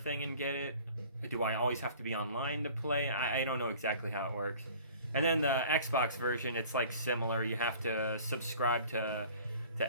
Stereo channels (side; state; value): both; inverted; correlation -0.47